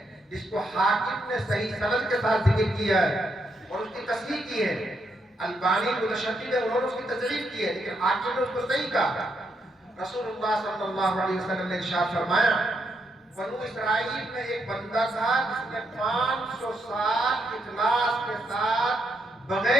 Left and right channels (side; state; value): both; normal; correlation 0.78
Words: جس کو حاکم نے صحیح سند کے ساتھ ذکر کیا ہے اور اس کی تصحیح کی ہے، البانی متشدد ہے، انہوں نے اس کی تضعیف کی ہے، لیکن حاکم نے اس کو صحیح کہا۔ رسول اللہ صلی اللہ علیہ وسلم نے ارشاد فرمایا، بنو اسرائیل میں ایک بندہ تھا جس نے 500 سال اخلاص کے ساتھ